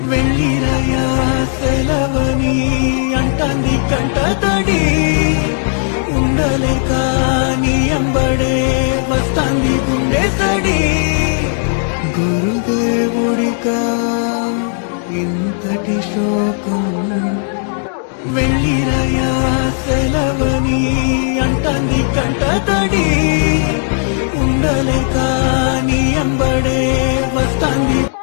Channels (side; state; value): right; silent; 64 dB below the other